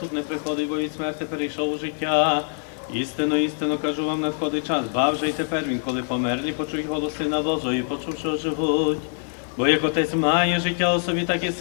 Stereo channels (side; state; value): right; silent; 59 dB below the other